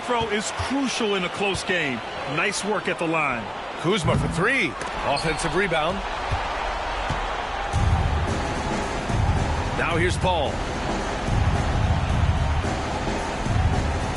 throw is crucial in a close game. Nice work at the line. Kuzma for 3. Offensive rebound. Now here's Paul.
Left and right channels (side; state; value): both; identical; correlation 1.00